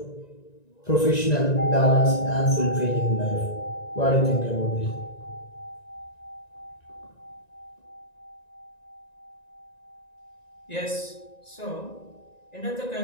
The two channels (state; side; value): late; right; 1.9 ms